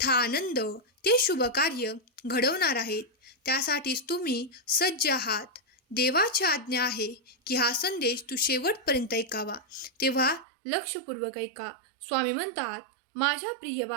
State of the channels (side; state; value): left; drops out; at 10.5 s